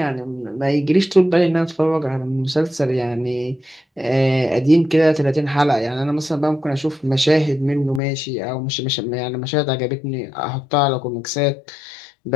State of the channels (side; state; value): right; drops out; at 8.0 s